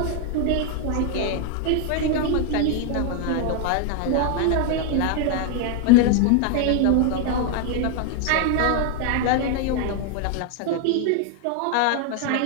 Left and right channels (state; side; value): different; both; correlation 0.00